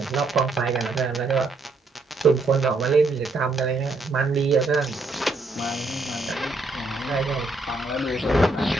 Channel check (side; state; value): left; quieter; 3.2 dB